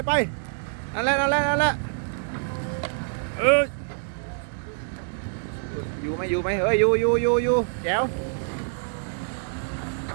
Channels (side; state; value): left; silent; digital silence